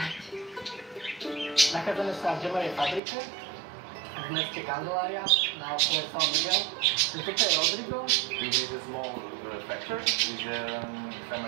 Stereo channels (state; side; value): drops out; left; at 3.0 s